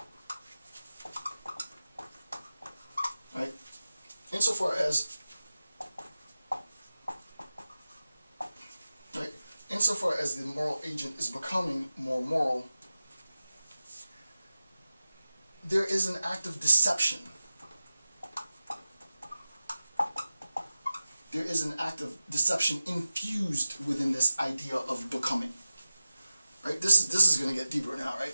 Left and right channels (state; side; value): inverted; both; correlation -0.96